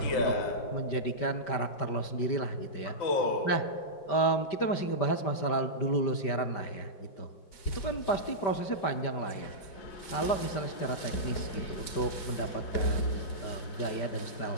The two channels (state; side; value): late; right; 5.1 ms